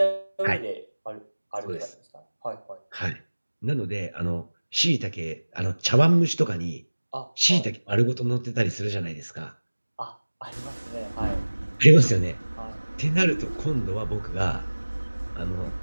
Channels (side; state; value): both; inverted; correlation -1.00